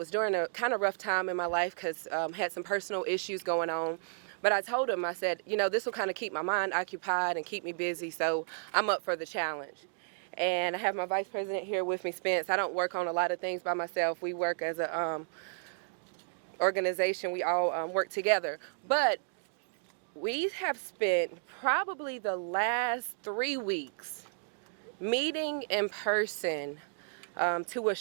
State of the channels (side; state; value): left; silent; digital silence